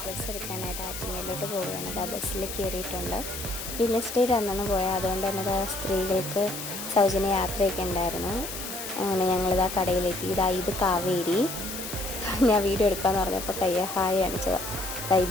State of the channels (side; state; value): left; noise; hiss, 8 dB below the sound